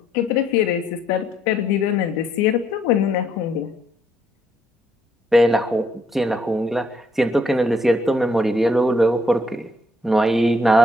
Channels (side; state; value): both; normal; correlation 0.70